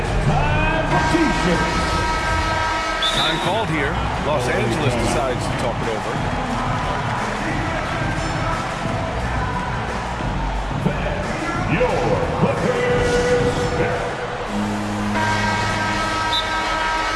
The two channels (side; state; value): both; identical; correlation 1.00